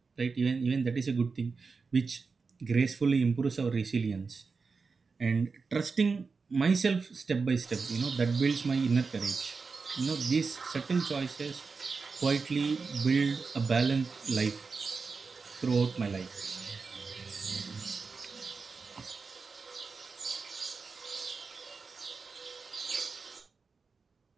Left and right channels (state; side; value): quieter; left; 4.7 dB